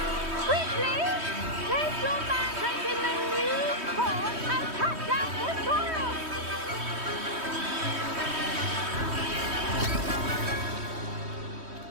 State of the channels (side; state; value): left; late; 3.1 ms